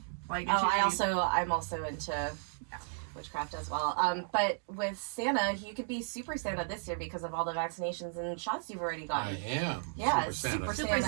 Like, I'm also into witchcraft as well. But with Santa, you could be Super Santa this year because of all the vaccinations and shots you've already I gotten. am. Yeah, Super Santa. Super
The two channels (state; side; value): silent; left; digital silence